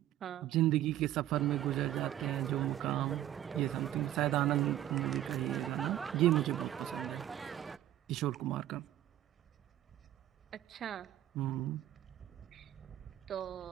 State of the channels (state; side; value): quieter; left; 12.7 dB